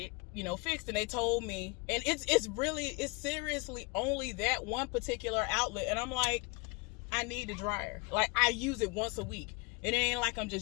it, fixed. And they told me, and it's seriously only that one particular outlet. And I'm like, I need a dryer. Like, I use it once a week. It ain't like I'm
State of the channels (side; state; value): right; quieter; 28.8 dB